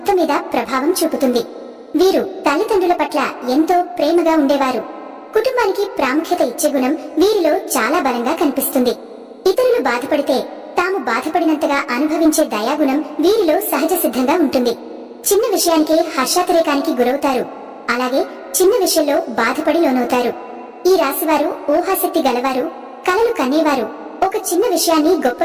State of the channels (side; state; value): both; identical; correlation 1.00